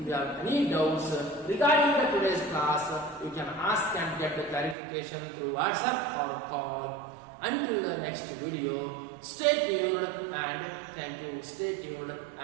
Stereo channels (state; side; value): drops out; left; at 4.8 s